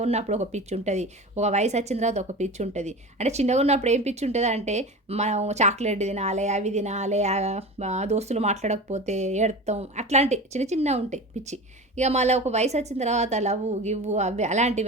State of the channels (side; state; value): both; normal; correlation 0.31